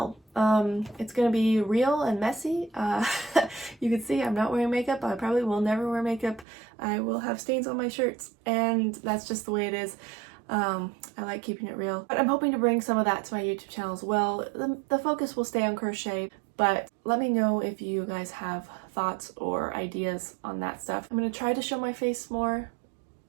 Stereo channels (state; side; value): drops out; left; at 6.5 s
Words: It's gonna be real and messy. You can see I'm not wearing makeup. I probably will never wear makeup. I will have stains on my shirts, and that's just the way it is. I like keeping it real, but I'm hoping to bring some of that to my YouTube channel as well. The focus will stay on crochet, but let me know if you guys have thoughts or ideas on that stuff. I'm going to try to show my face more,